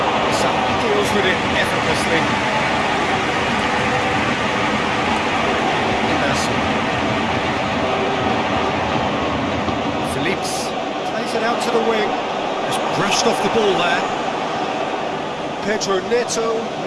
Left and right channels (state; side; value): identical; both; correlation 1.00